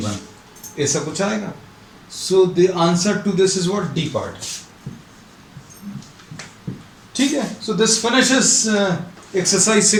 ऐसा कुछ आएगा। So the answer to this is what? D part। ठीक है, so this finishes exercise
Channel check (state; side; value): identical; both; correlation 1.00